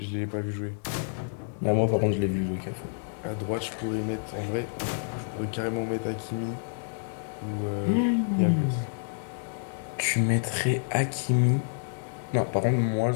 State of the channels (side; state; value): right; silent; digital silence